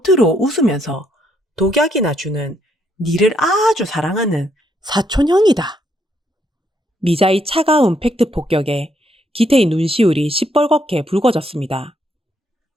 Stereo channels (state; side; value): normal; both; correlation 0.74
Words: 웃으면서 독약이나 주는 니를 아주 사랑하는 사촌형이다. 미자의 차가운 팩트 폭격에 기태의 눈시울이 시뻘겋게 붉어졌습니다.